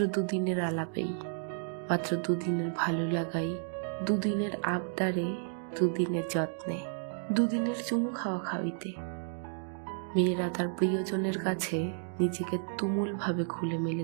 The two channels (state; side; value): silent; left; digital silence